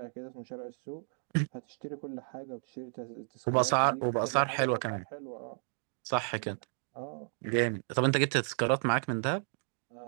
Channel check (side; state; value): left; silent; 56 dB below the other